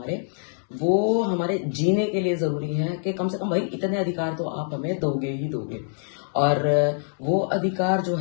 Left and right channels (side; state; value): right; silent; digital silence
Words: वो हमारे जीने के लिए ज़रूरी है कि कम से कम भाई इतने अधिकार तो आप हमें दोगे ही दोगे। और वो अधिकार जो